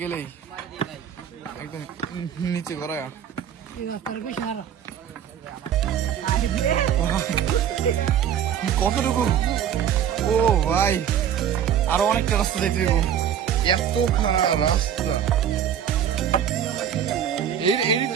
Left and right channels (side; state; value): left; quieter; 9.3 dB